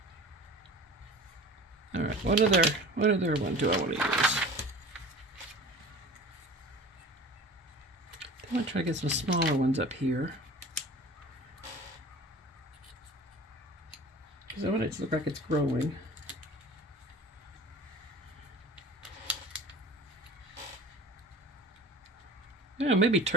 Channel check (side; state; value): both; normal; correlation 0.40